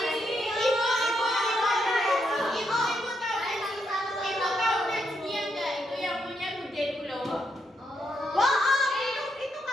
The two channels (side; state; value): both; normal; correlation 0.79